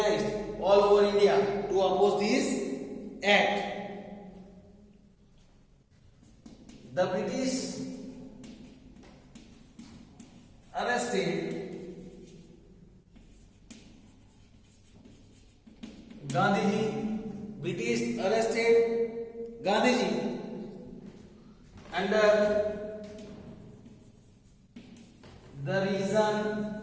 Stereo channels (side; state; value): both; identical; correlation 1.00